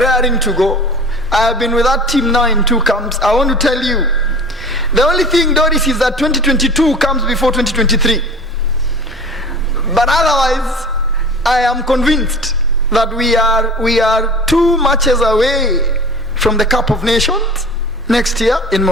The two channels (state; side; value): normal; both; correlation 0.39